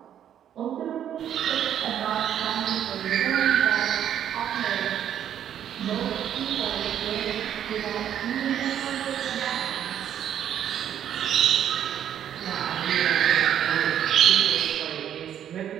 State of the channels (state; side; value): quieter; left; 10.0 dB